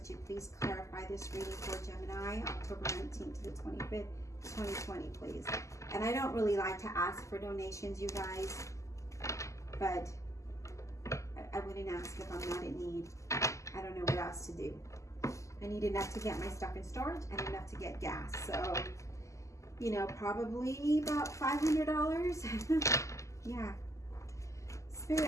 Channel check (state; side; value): late; right; 0.15 ms